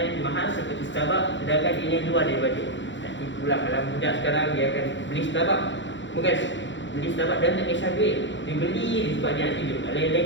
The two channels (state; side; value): late; right; 0.54 ms